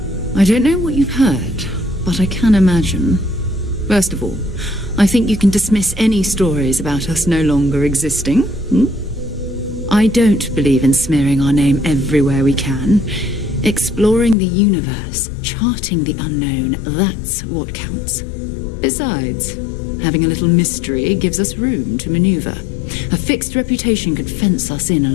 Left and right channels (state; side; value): drops out; right; at 14.4 s